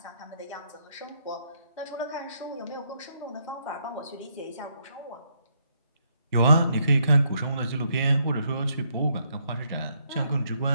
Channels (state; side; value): inverted; both; correlation -0.74